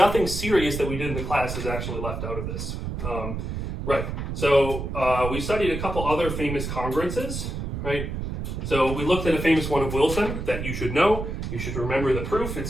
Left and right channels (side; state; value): right; noise; rumble, 4 dB below the sound